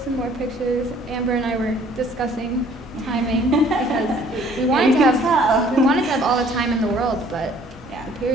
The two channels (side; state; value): both; normal; correlation 0.57